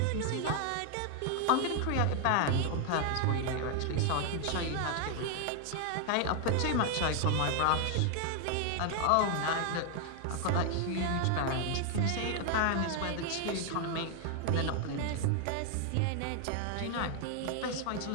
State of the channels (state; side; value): different; both; correlation 0.00